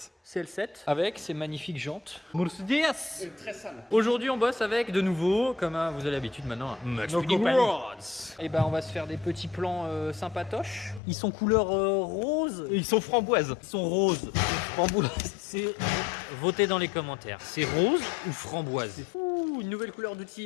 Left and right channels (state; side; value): drops out; right; at 11.0 s